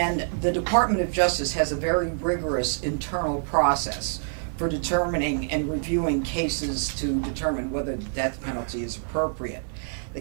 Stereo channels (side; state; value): left; silent; digital silence